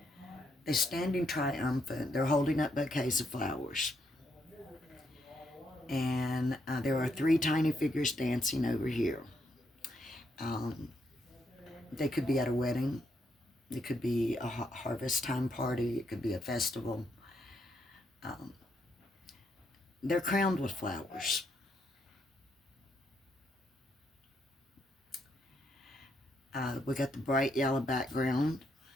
They're standing triumphant. They're holding up bouquets of flowers. And there are 3 tiny figures dancing over here. They could be at a wedding. It could be a harvest time party. It could be a festival. They're crowned with flowers. We got the bright yellow background,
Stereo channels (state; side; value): normal; both; correlation 0.76